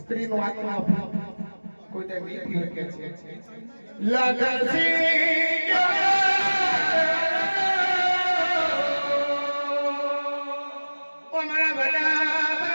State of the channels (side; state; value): both; inverted; correlation -1.00